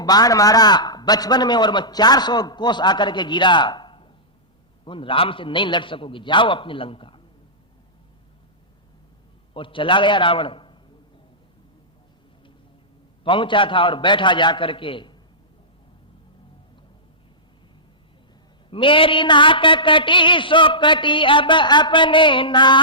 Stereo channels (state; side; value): normal; both; correlation -0.18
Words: बाण मारा बचपन में और मैं 400 कोस आकर के गिरा, उन राम से नहीं लड़ सकोगे, जाओ अपनी लंका। और चला गया रावण। पहुंचा था और बैठा जाकर के, मेरी नाक कटी सो कटी, अब अपने